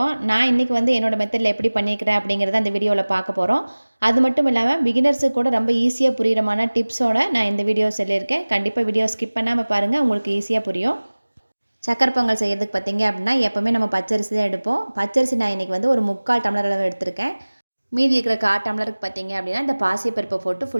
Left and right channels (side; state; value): both; inverted; correlation -1.00